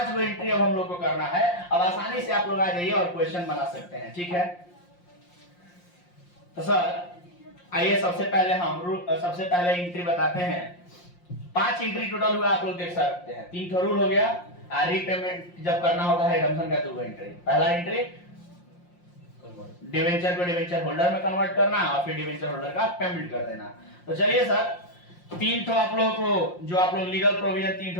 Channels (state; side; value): late; right; 5.7 ms